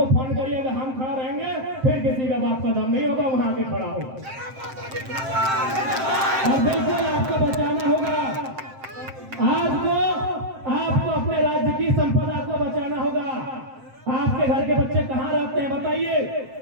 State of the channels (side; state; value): left; late; 7.6 ms